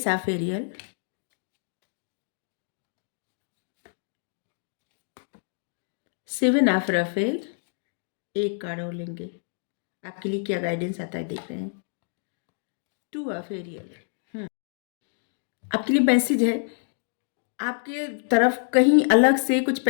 of Ariel, 7 of Raphael, एक कार्ड और लेंगे, आपके लिए क्या गाइडेंस आता है देख रहे हैं। 2 ऑफ एरियल, आपके लिए मैसेज है, आपके तरफ कहीं अलग से कुछ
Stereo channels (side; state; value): right; silent; digital silence